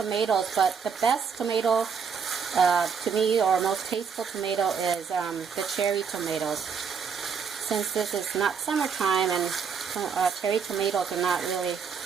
but the best tomato to me, or most tasteful tomato, is the cherry tomatoes. Since this is not summertime and cherry tomatoes are not really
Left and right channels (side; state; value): left; quieter; 6.3 dB